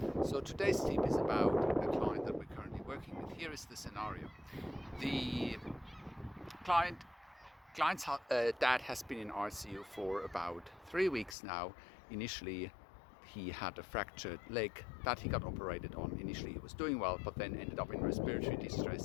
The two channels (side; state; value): right; drops out; at 11.4 s